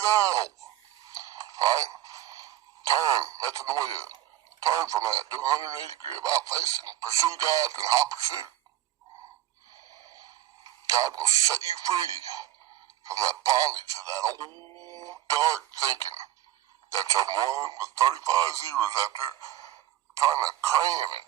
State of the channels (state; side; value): quieter; left; 13.3 dB